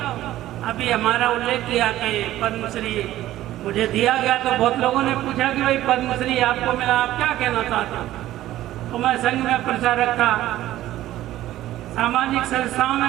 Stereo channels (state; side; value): quieter; left; 14.4 dB